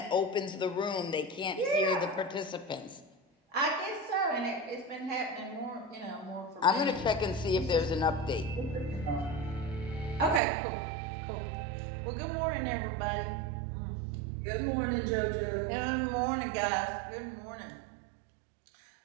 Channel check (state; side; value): drops out; left; at 10.4 s